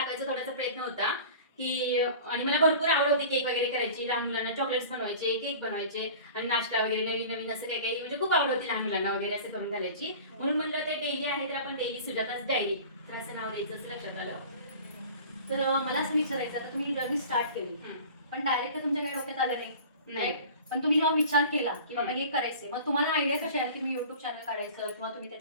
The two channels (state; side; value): inverted; both; correlation -0.40